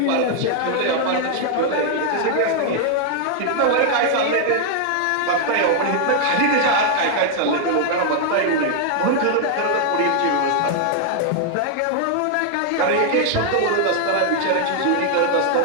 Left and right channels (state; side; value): different; both; correlation 0.00